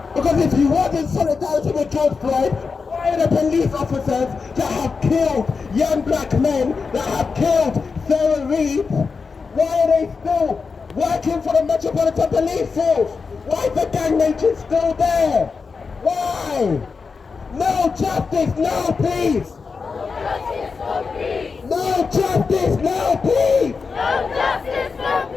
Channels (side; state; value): right; quieter; 4.9 dB